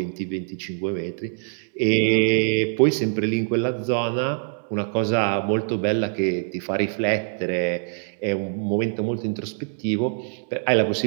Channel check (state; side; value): silent; left; digital silence